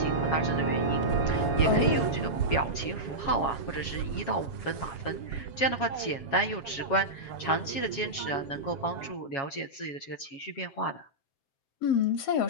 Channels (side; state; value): right; late; 7.3 ms